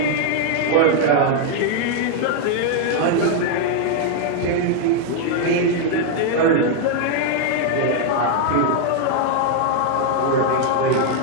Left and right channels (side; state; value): both; different; correlation 0.00